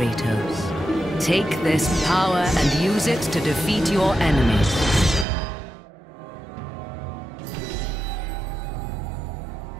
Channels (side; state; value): left; drops out; at 5.2 s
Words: Take this power and use it to defeat your enemies.